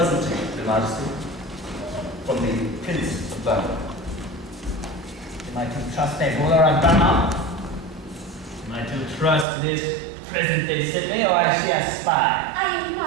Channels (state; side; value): drops out; left; at 9.5 s